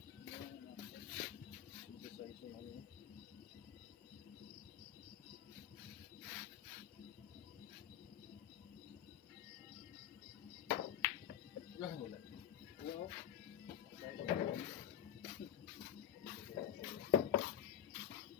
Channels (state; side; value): quieter; right; 10.1 dB